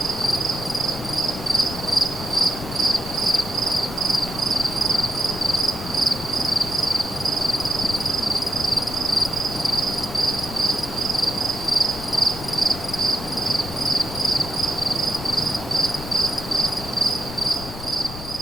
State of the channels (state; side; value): noise; left; rumble, 12 dB below the sound